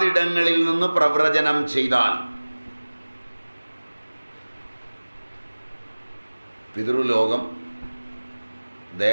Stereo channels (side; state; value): both; inverted; correlation -1.00